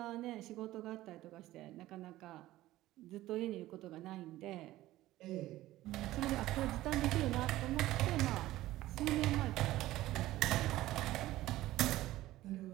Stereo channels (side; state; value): left; quieter; 16.0 dB